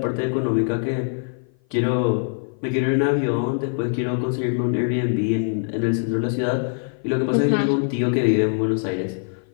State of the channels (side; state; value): right; silent; 56 dB below the other